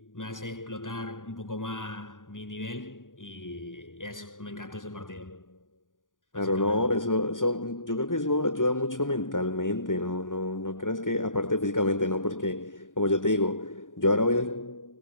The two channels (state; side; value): late; right; 0.88 ms